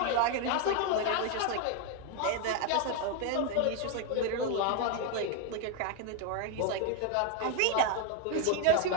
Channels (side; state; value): both; different; correlation 0.01